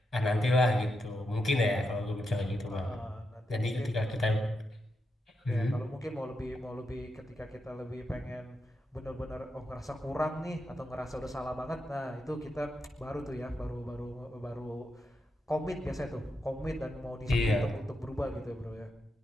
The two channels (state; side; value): normal; both; correlation 0.85